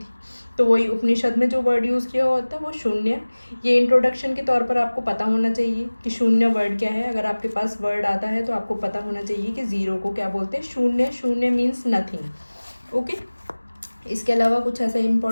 तो वही उपनिषद में जो वर्ड यूज़ किया होता है वो शून्य. ये इंट्रोडक्शन के तौर पर आपको पता होना चाहिए कि शून्य वर्ड क्या है. अगर आपके पास वर्ड आता है तो आपको पता होना चाहिए कि ज़ीरो को क्या बोलते हैं, शून्य. शून्य मीन्स नथिंग. ओके, इसके अलावा कुछ ऐसा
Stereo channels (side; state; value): both; inverted; correlation -1.00